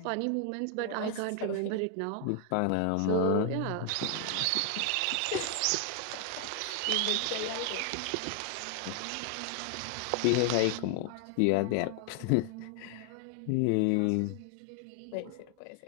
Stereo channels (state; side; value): different; both; correlation 0.00